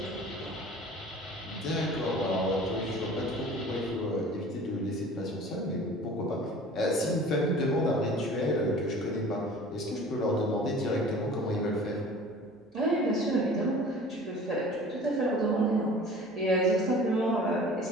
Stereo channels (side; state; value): both; normal; correlation 0.44